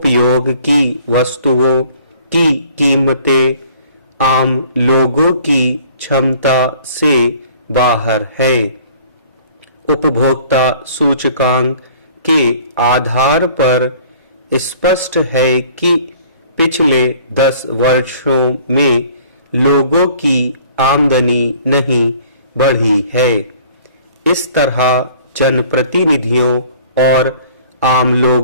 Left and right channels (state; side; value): inverted; both; correlation -0.53